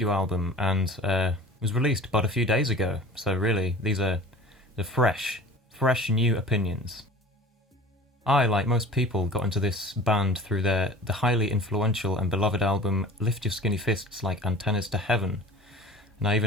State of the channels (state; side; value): normal; both; correlation 0.42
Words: album and was released but a few days ago, so really these are the fresh new opinions. I, like most people, got into this band through the highly influential and beloved album Lift Your Skinny Fists Like Antennas to Heaven, and I